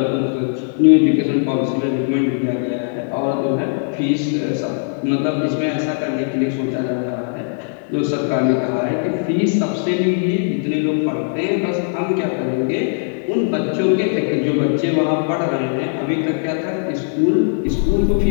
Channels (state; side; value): silent; right; digital silence